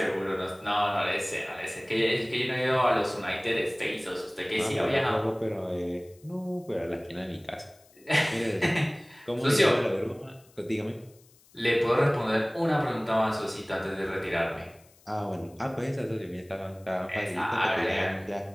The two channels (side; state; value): left; noise; hiss, 29 dB below the sound